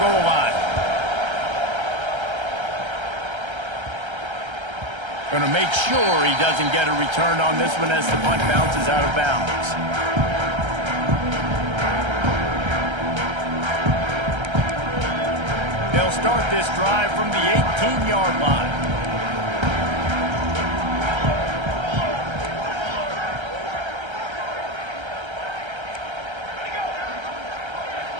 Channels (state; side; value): late; left; 1.3 ms